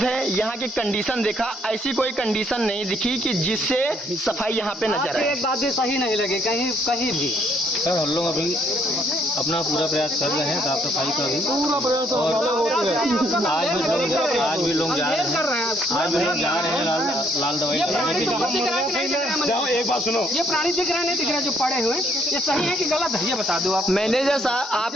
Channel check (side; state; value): both; normal; correlation 0.68